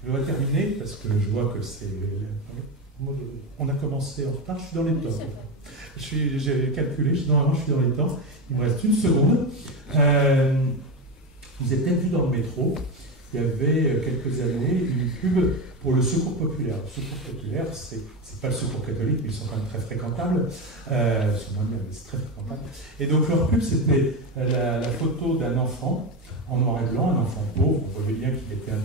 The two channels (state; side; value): normal; both; correlation 0.17